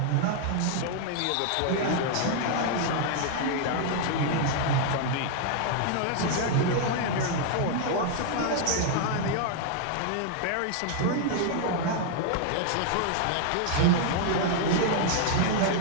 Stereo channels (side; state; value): both; different; correlation 0.00